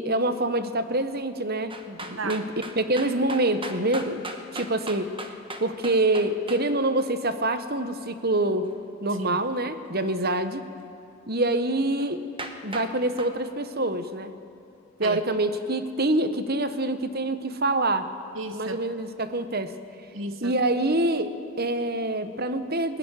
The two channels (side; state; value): both; normal; correlation 0.02